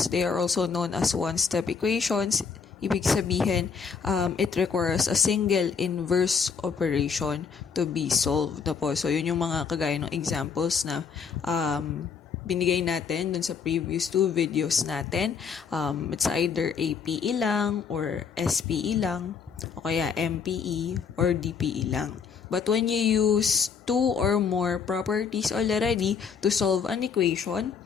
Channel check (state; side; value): quieter; right; 6.2 dB